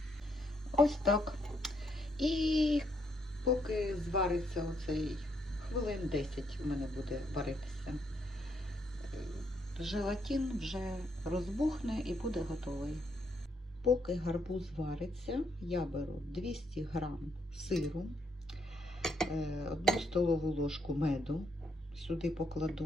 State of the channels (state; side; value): normal; both; correlation 0.74